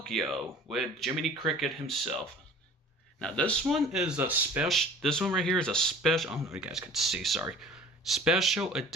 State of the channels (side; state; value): both; normal; correlation 0.46